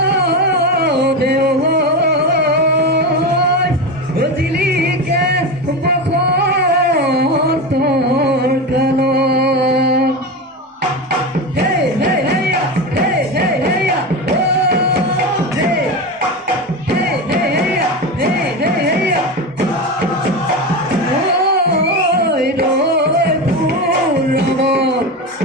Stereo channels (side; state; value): both; normal; correlation 0.20